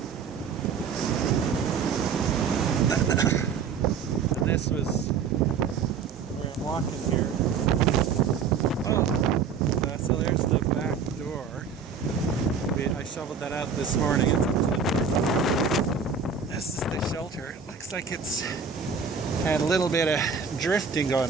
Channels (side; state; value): left; quieter; 5.9 dB